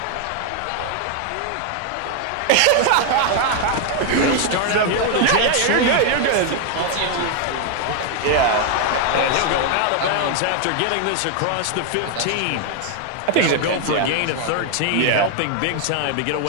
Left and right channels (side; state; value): both; different; correlation 0.00